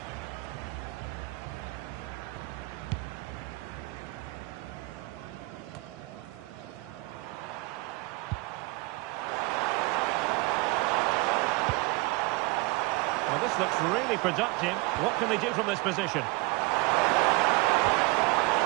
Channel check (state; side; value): quieter; left; 24.2 dB